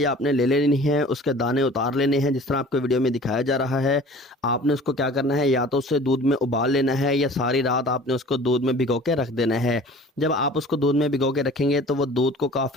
आपने ले लेनी है, उसके दाने उतार लेने हैं जिस तरह आपको वीडियो में दिखाया जा रहा है। आपने उसको क्या करना है, या तो उसे दूध में उबाल लेना है या सारी रात आपने उसको दूध में भिगो के रख देना है। जब आप उसको दूध में भिगो के रखेंगे तो वो दूध को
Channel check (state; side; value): normal; both; correlation 0.45